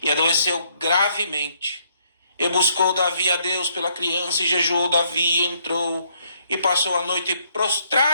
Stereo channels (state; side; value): inverted; both; correlation -0.69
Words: e adoeceu gravemente. E buscou Davi a Deus pela criança, e jejuou Davi, e entrou, e passou a noite